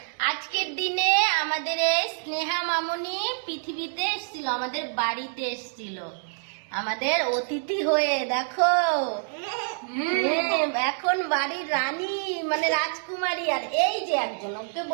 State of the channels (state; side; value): silent; left; 60 dB below the other